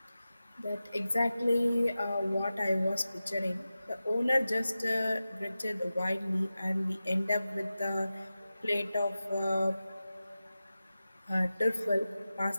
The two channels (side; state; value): both; inverted; correlation -0.94